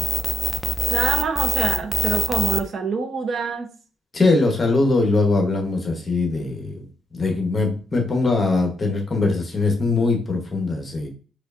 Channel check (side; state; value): both; normal; correlation 0.81